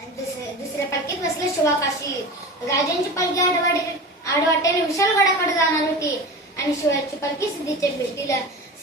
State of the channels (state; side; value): normal; both; correlation 0.31